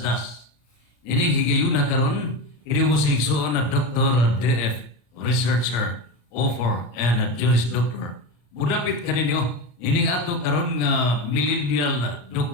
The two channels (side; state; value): right; late; 34 ms